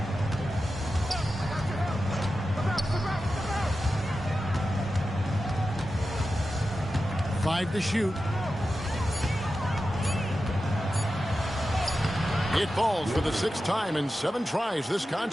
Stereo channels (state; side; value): normal; both; correlation 0.92